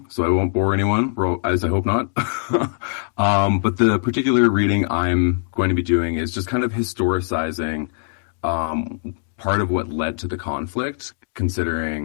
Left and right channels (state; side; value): silent; right; digital silence